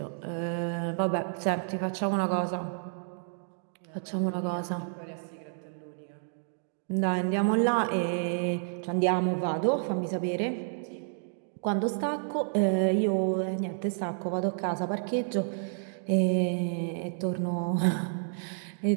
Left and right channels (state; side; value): silent; left; digital silence